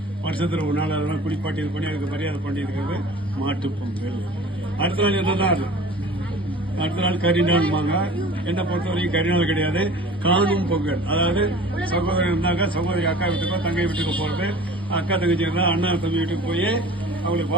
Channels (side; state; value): both; normal; correlation 0.43